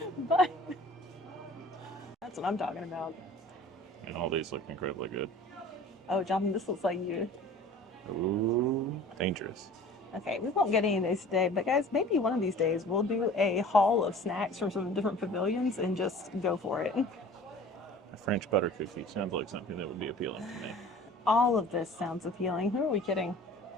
but that's what I'm talking about. And all these look incredibly good. Oh, Jonathan, this looks like you. Ooh, dangerous. Okay, we won't get any of these today, but guys, maybe one of these days we'll do a haul of snacks from some different pavilions and just go for it. A French butter cookie sounds like something that would be appealing to me. All of this sounds appealing. Who are we kidding?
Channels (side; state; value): both; normal; correlation 0.45